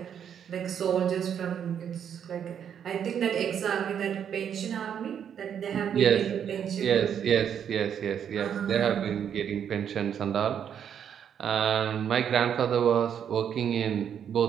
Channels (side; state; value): left; quieter; 8.5 dB